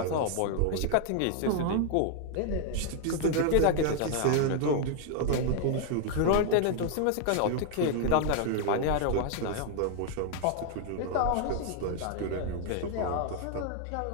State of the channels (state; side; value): different; both; correlation 0.00